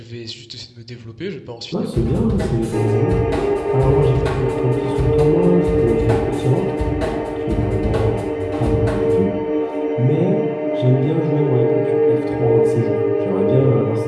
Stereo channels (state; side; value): identical; both; correlation 1.00